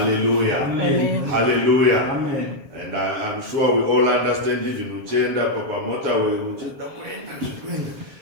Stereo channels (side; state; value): left; late; 7.1 ms